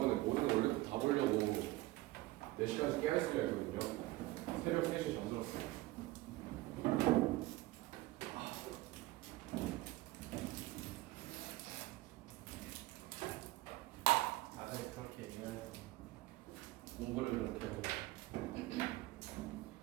모든 원래 다 보려고 4시간씩 깨어있으려 했거든요. 새벽 3시에 잠들었어요. 다들 그렇게 얘기해야지. 공부를 그렇게 하고.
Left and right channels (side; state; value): left; quieter; 18.6 dB